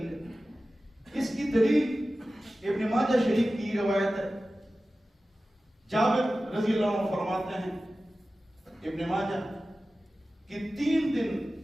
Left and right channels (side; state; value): both; normal; correlation 0.95